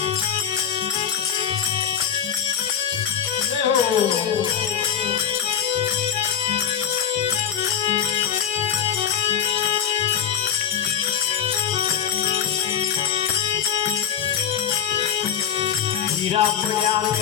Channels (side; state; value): right; quieter; 8.5 dB